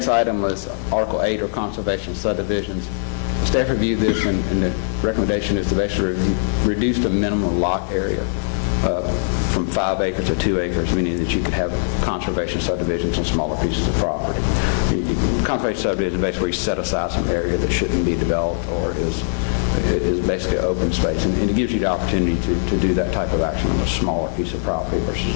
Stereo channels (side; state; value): right; silent; digital silence